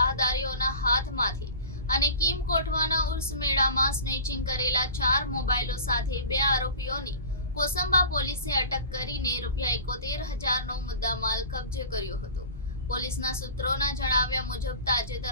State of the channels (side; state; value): both; inverted; correlation -0.37